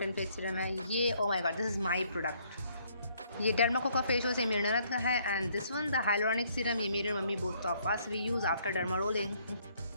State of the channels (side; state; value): both; inverted; correlation -0.66